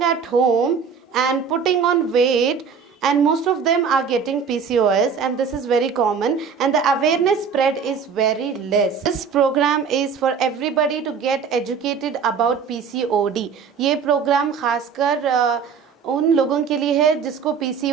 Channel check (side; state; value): left; quieter; 6.2 dB